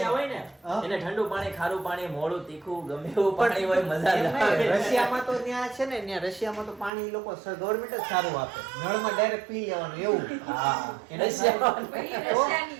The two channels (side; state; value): left; drops out; at 6.9 s